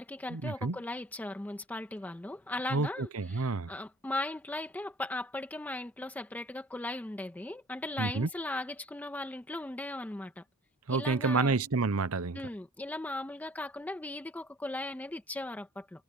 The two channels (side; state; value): both; normal; correlation 0.51